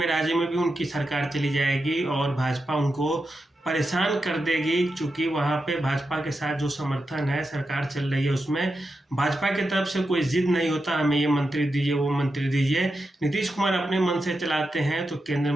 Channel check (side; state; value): both; normal; correlation 0.88